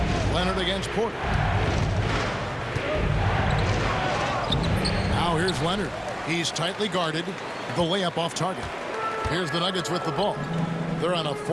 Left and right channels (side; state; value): both; identical; correlation 1.00